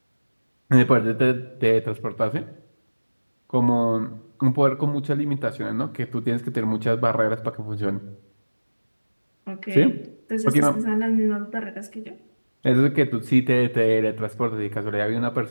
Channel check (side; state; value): both; inverted; correlation -1.00